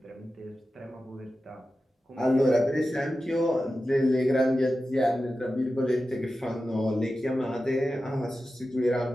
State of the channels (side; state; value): both; normal; correlation 0.93